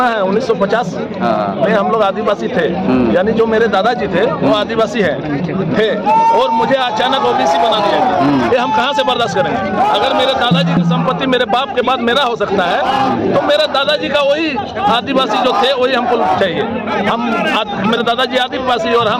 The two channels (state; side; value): identical; both; correlation 1.00